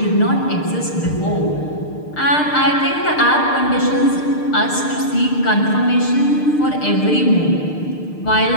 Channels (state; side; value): late; right; 6.6 ms